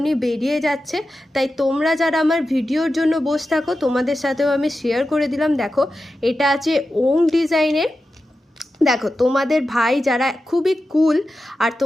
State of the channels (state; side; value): normal; both; correlation 0.91